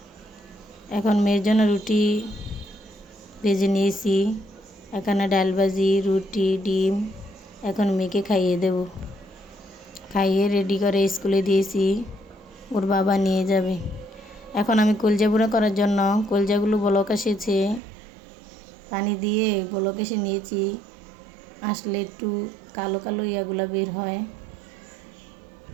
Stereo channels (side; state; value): left; drops out; at 17.8 s